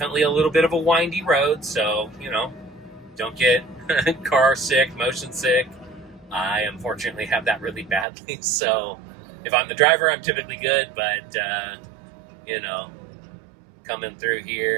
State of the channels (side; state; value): left; drops out; at 8.1 s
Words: a little bit of a windy road, so, don't get car sick, motion sick. I unfortunately have that really badly, so if I'm the driver, I'm typically good, but, coming through